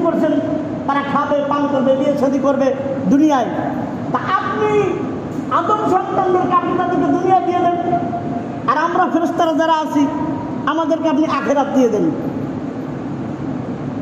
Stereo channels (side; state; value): both; identical; correlation 1.00